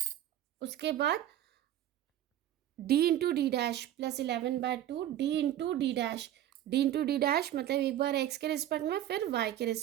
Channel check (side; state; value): left; quieter; 12.3 dB